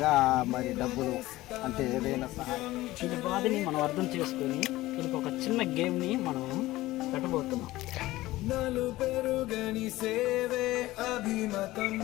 మరి డబ్బులు అంటే ఏదైనా సహాయం ఈ బాధని మనం అర్థం చేసుకొని దీనికి ఒక చిన్న గేమ్ని మనం పెట్టబోతున్నాం.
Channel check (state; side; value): quieter; right; 17.5 dB